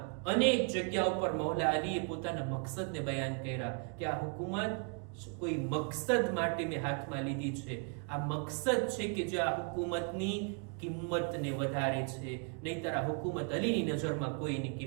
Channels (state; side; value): quieter; left; 39.3 dB